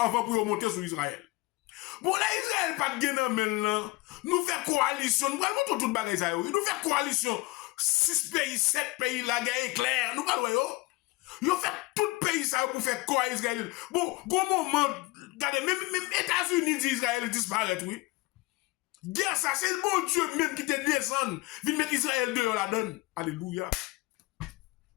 pour monter sur Israël. Bon, là, Israël pas de gain maintenant. Nous faisons coalition. Nous allons tout le bagage. Nous faisons coalition. 6 pays, 7 pays, la guerre est claire. Nous allons. Ils fait tout le pays ça pour faire quoi Israël. Bon, gros moment, regardez, même États-Unis dit Israël disparaît, oui. Guerre, ça, c'est le bon Dieu même qui te descend. Vite mettre Israël dehors la donne. Alléluia.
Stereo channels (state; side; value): quieter; right; 21.9 dB